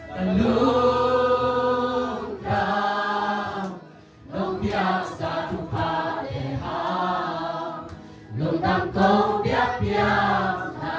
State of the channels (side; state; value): both; identical; correlation 1.00